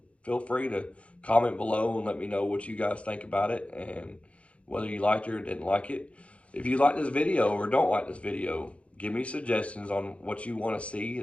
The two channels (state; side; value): late; right; 0.062 ms